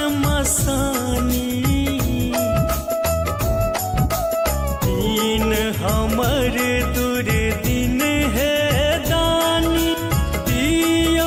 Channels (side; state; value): both; identical; correlation 1.00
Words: मसानी। दीन हमर दुर्दिन है दानी,